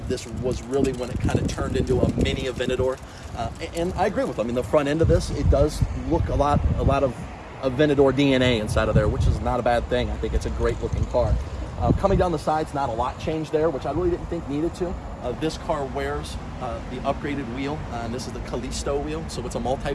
this was really when it kind of turned into a mini Aventador, and I agree with them. I mean, the front end of this, it does look a lot of Aventador DNA inside of there, which is not a bad thing. I think it's a great looking car. Coming down the sides, not a lot changed there, which I really didn't think needed to. This car wears the upgraded wheel, and this is the Callisto wheel, so it's a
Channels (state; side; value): identical; both; correlation 1.00